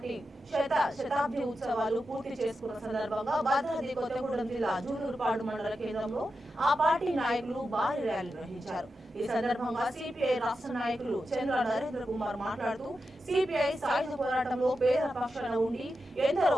శతాబ్ది ఉత్సవాలు పూర్తి చేసుకున్న సందర్భంగా భద్రాద్రి కొత్తగూడెం జిల్లా జూలూరుపాడు మండల కేంద్రంలో ఆ పార్టీ నాయకులు భారీ ర్యాలీ నిర్వహించారు. ఈ సందర్భంగా సిపిఐ రాష్ట్ర నాయకులు చంద్ర నరేంద్ర కుమార్ మాట్లాడుతూ సిపిఐ సాయుధ పోరాటంలో పేద పక్షాన ఉండి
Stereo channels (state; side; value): normal; both; correlation 0.89